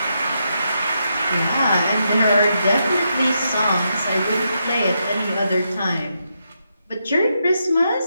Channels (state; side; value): inverted; both; correlation -0.82